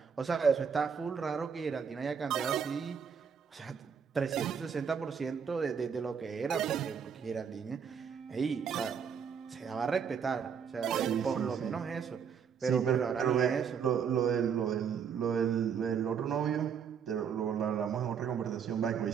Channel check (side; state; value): left; quieter; 7.0 dB